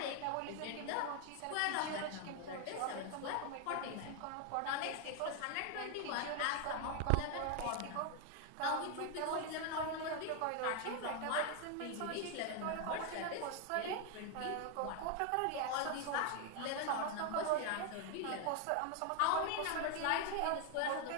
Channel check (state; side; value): different; both; correlation 0.01